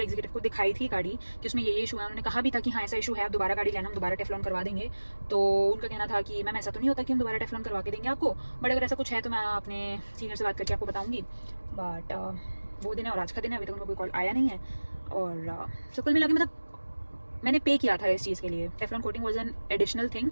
एग्जीक्यूटिव को दिखाई थी गाड़ी कि उसमें ये इशू है, उन्होंने कहा भी था कि हाँ ऐसा इशू है, आप दोबारा गाड़ी लेना, हम दोबारा टेफ्लॉन करवा देंगे। तो उनका कहना था कि मैम ऐसा तो नहीं होता कि हम दोबारा टेफ्लॉन करवा के देंगे आपको, बट अगर ऐसा कुछ है तो मैं अपने सीनियर से बात करके आपको बताऊँगी। बट वो दिन है और आज का दिन है, अभी तक उनको कोई कॉल आया नहीं है। और so कुल मिला के मतलब मैंने पे किया था इस चीज़ के लिए, Teflon coating was an additional thing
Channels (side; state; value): both; inverted; correlation -1.00